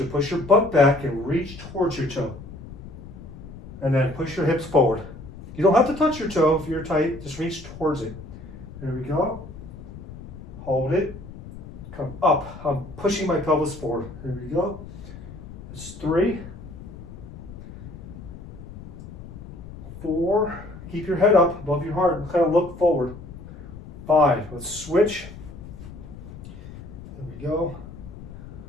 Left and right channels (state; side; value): noise; left; rumble, 14 dB below the sound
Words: to push your butt back and reach towards your toe. And then push your hips forward. You don't have to touch your toe if you're tight, just reach towards it. There we go. Hold it. Come up. I'm pushing my pelvis forward. There we go. That's 3. 4, keep your head up above your heart and kind of look forward. 5, let's switch. There we go.